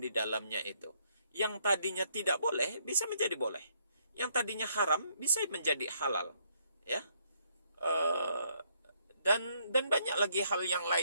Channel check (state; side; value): inverted; both; correlation -0.71